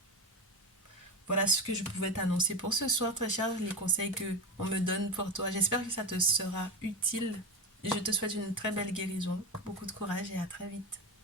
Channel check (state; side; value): normal; both; correlation 0.19